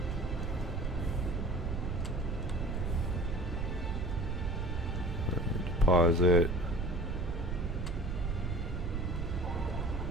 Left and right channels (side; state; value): right; noise; rumble, 2 dB below the sound